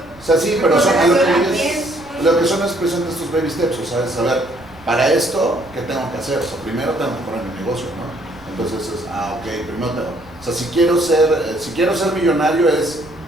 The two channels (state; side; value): noise; right; rumble, 23 dB below the sound